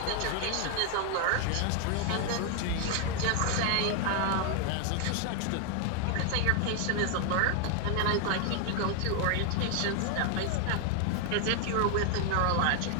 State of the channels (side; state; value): both; different; correlation 0.00